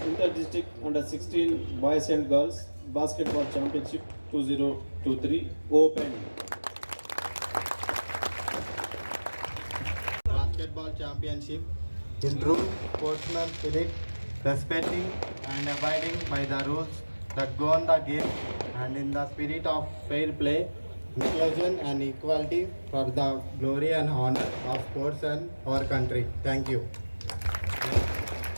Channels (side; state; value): both; inverted; correlation -1.00